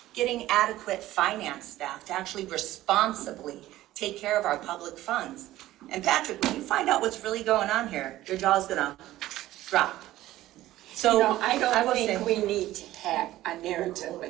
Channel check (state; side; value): quieter; left; 15.2 dB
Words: Getting adequate finance staff to actually responsibly take care of our public funds. And Patrick, when you find out what's really going on here, your jaw's gonna drop. So I don't will think say- we need to have a narrative